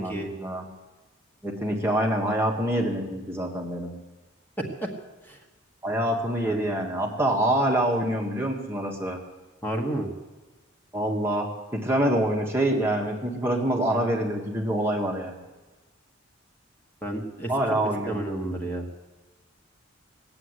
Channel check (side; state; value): both; normal; correlation 0.57